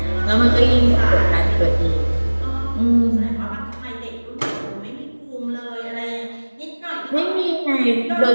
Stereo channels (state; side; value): inverted; both; correlation -1.00